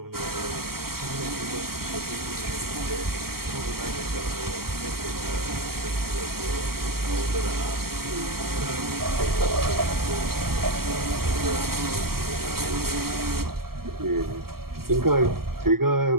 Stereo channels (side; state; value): left; late; 0.94 ms